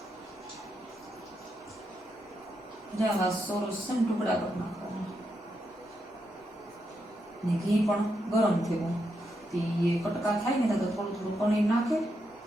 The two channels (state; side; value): normal; both; correlation 0.83